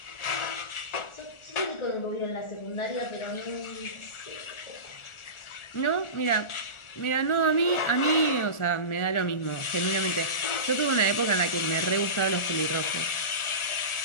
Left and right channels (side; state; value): right; late; 1.4 ms